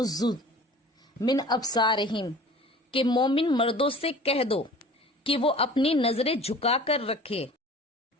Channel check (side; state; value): both; normal; correlation 0.44